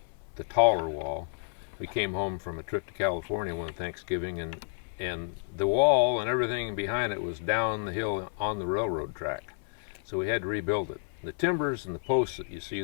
taller wall. We came home from a trip to California one Thanksgiving, and the wall and everything behind it was down the hill on the railroad track. So we had to rebuild it. The timbers and the posts that you see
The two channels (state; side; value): silent; right; digital silence